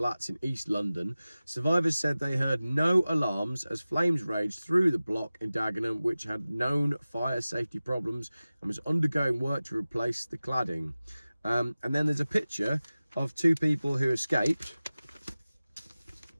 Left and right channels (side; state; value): both; inverted; correlation -0.97